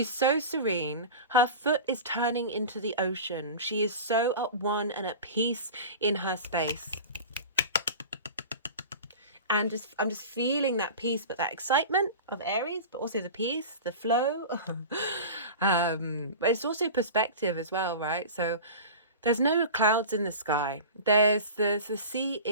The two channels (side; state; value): both; inverted; correlation -0.34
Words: so serene. Her foot is turning into the ocean. She is so at one and at peace in her space. And I'm just feeling that peace, but that excitement of Aries, but also the peace, the flow. But it's also perspective as well, right? So there's no clouds in the sky. The sea